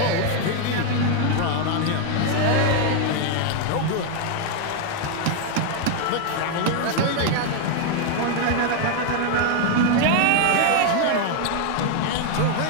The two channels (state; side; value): different; both; correlation 0.00